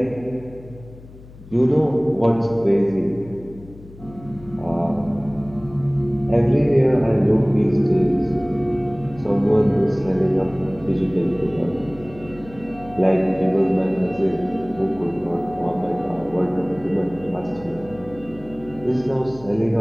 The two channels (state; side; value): noise; left; hum, 20 dB below the sound